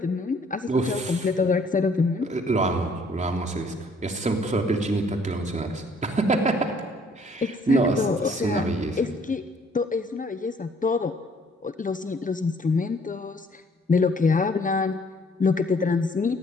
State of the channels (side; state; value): both; normal; correlation 0.61